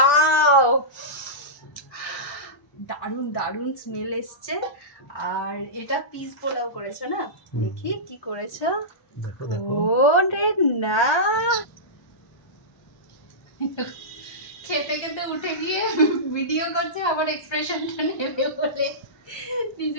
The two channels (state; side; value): late; right; 1.3 ms